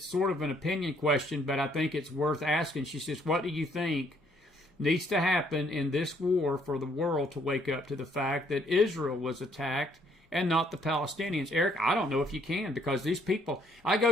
sort of an opinion question, but I think it's worth asking. She says, what do you think needs to happen in this war for the world to wake up to the fact that Israel was attacked and not the Palestinians? Eric, I don't know if you can, because these people,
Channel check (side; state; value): both; normal; correlation 0.67